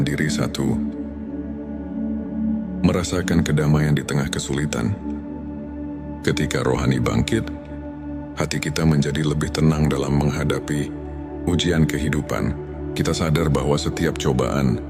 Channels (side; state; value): both; identical; correlation 1.00